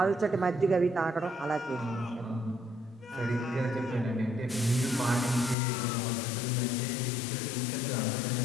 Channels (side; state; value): right; drops out; at 5.6 s